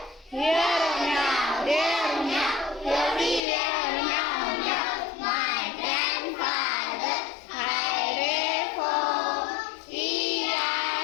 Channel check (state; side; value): drops out; right; at 3.4 s